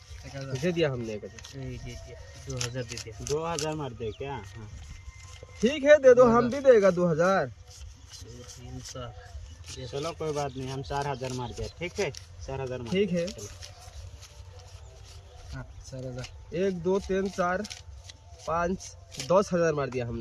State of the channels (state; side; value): identical; both; correlation 1.00